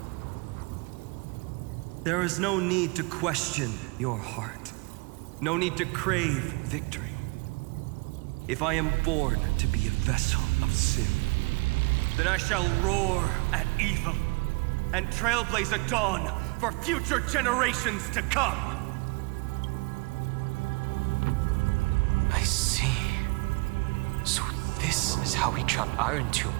There is no need to question your heart. No need to crave victory. If I am born to be a vessel of sin, then I shall roar at evil and trailblaze a dawn for future generations to come. I see. So this is how he trapped Irontomb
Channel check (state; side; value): quieter; left; 28.1 dB